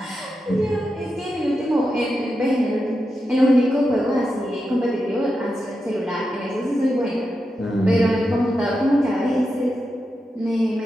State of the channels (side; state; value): both; normal; correlation 0.88